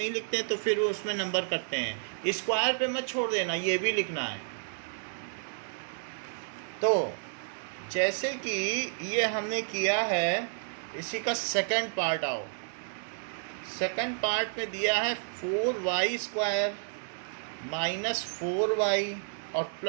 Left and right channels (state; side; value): silent; left; digital silence